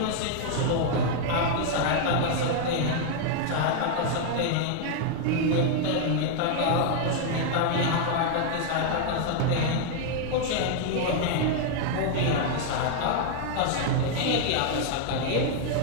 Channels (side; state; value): both; different; correlation 0.00